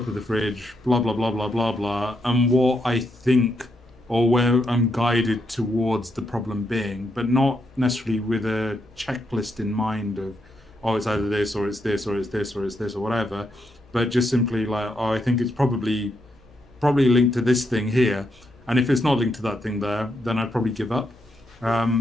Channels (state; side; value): normal; both; correlation 0.80